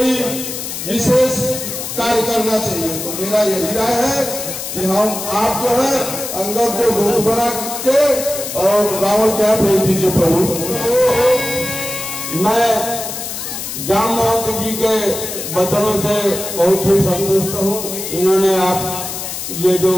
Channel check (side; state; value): left; noise; hiss, 6 dB below the sound